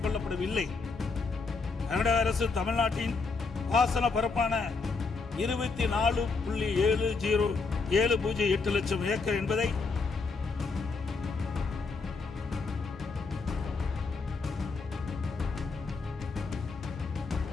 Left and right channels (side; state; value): right; quieter; 4.3 dB